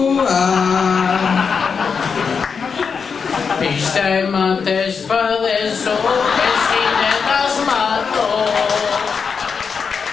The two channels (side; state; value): right; quieter; 5.8 dB